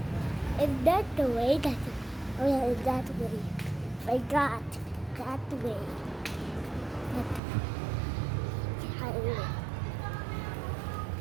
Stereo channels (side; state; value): left; drops out; at 7.4 s